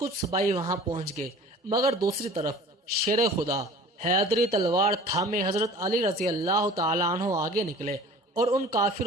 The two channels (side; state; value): both; normal; correlation 0.44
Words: سپاہی وہاں پہنچ گئے، مگر دوسری طرف شیر خدا حیدری تلوار تھامے حضرت علی رضی اللہ تعالیٰ عنہ آگے نکلے اور ان